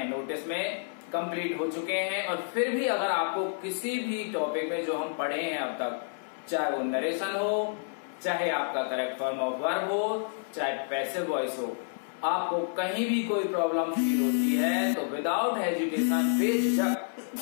नोटिस में कंप्लीट हो चुके हैं। और फिर भी अगर आपको किसी भी टॉपिक में जो हम पढ़े हैं अब तक, चाहे वो नरेशन हो, चाहे आपका करेक्ट फॉर्म ऑफ वर्ब हो, चाहे पैसिव वॉइस हो, आपको कहीं भी कोई प्रॉब्लम फील होती है तो विदाउट हेजिटेशन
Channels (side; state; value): right; silent; digital silence